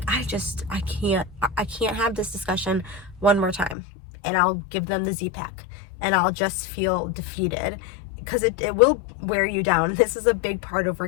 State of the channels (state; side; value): drops out; right; at 3.8 s